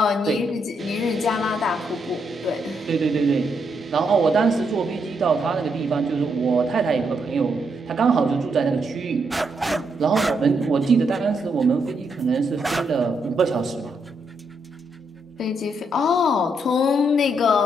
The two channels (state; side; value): normal; both; correlation 0.78